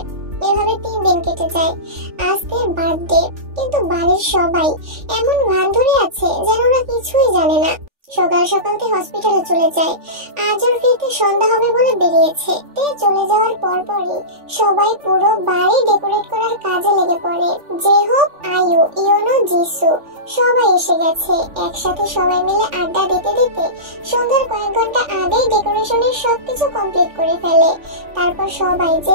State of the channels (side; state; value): left; late; 3.4 ms